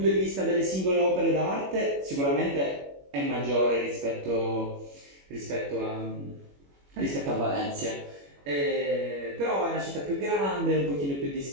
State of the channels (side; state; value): left; late; 21 ms